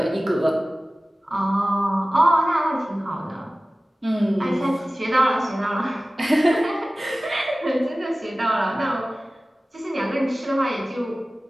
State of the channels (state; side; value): normal; both; correlation 0.97